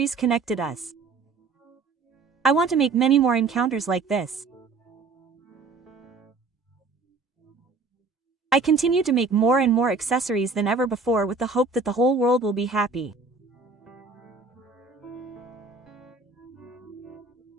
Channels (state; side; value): quieter; left; 4.1 dB